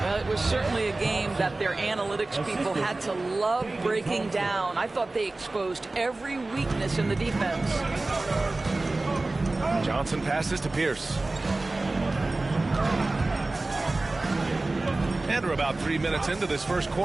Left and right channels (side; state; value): left; quieter; 3.1 dB